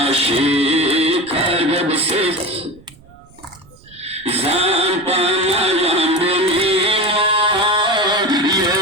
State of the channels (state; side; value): noise; right; rumble, 26 dB below the sound